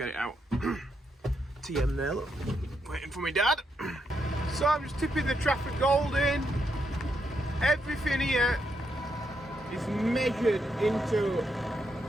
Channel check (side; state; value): both; normal; correlation 0.80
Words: it out. TM there, look, waiting for my dad. So I'm just tipping the Trafford Gold in. Everything here is measured into